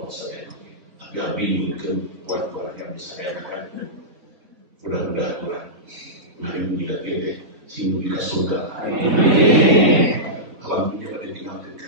saya, tapi abi mungkin buat yang bisa saya kan, mudah-mudahan kurang, mari menjilat kita, sehingga kita surga, alam dunia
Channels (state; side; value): late; left; 4.0 ms